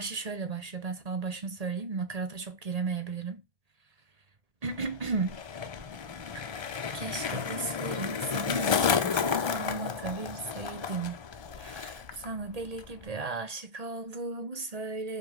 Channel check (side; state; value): left; late; 1.3 ms